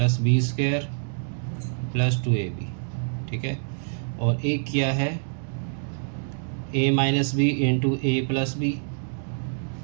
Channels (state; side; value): silent; left; digital silence